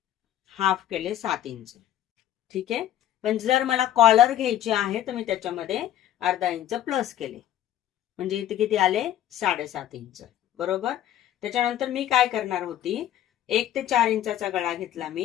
हाफ केले 7 इंच. ठीक आहे. पण जर मला कॉलर घ्यायची आहे तर मी त्याच्यामध्ये अर्धा इंच प्लस केले. म्हणजे इथे किती आले, 7.5 इंच. बरोबर. त्याच्यानंतर मी काय करणार होती, 1 ते 4 इंचाचा गळा घेतला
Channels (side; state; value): right; quieter; 12.0 dB